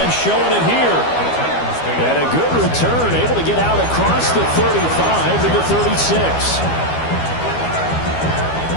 showing it here. And a good return, able to get out across the 35 to the 36.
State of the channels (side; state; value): right; late; 12 ms